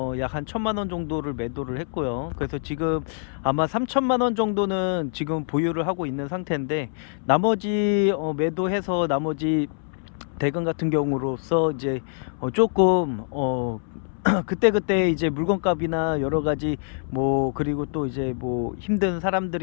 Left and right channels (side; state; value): right; silent; 62 dB below the other